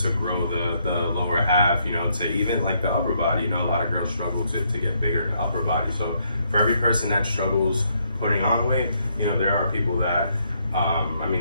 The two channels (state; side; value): inverted; both; correlation -0.73